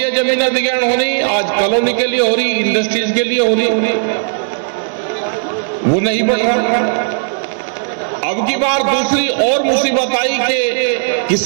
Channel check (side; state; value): left; silent; digital silence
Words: जमीन अधिग्रहण हो रही, आज कॉलोनी के लिए हो रही, इंडस्ट्रीज के लिए हो रही, वो नहीं बढ़ रहा। अब की बार दूसरी और मुसीबत आई कि